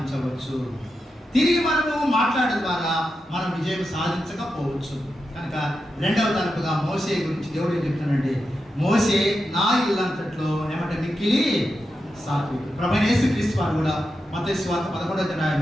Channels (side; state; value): both; normal; correlation 0.88